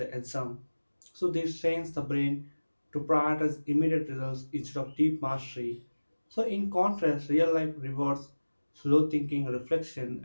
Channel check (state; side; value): inverted; both; correlation -1.00